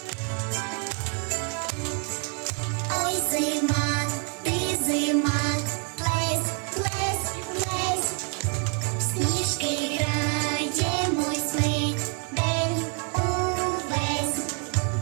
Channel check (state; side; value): quieter; left; 37.8 dB